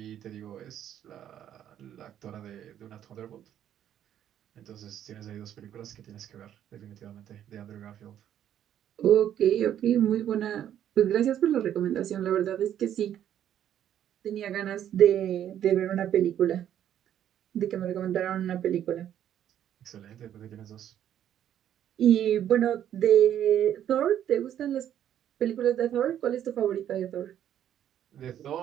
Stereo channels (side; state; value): left; quieter; 10.5 dB